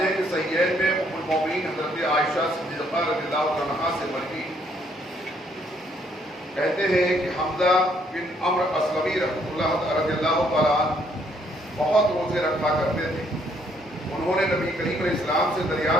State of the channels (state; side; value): normal; both; correlation 0.68